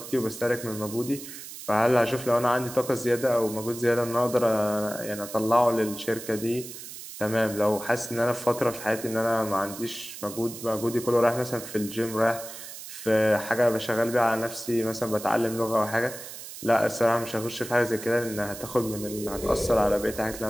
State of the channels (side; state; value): right; noise; hiss, 12 dB below the sound